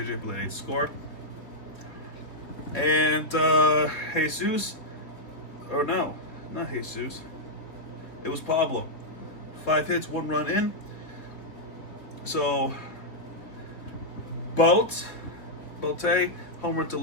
Bleday to score. And Jesus, or no, not Jesus. It was Pablo. 5 hits, 1 run in. So, Bote, homer to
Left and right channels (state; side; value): late; right; 3.9 ms